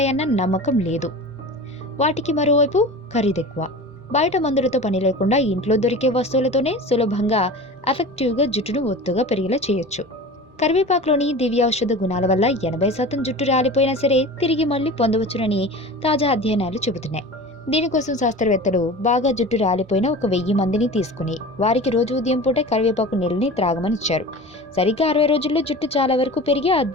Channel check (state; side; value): normal; both; correlation 0.34